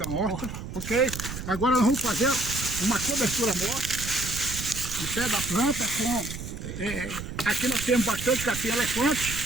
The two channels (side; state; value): right; noise; rumble, 8 dB below the sound